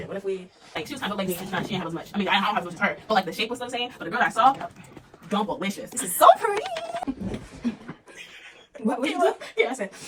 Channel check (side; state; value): both; identical; correlation 1.00